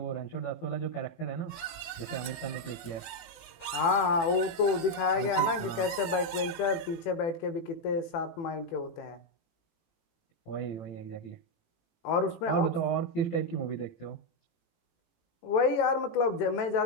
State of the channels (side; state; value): right; late; 18 ms